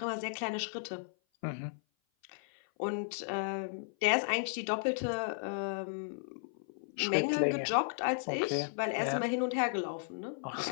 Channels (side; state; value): right; silent; 55 dB below the other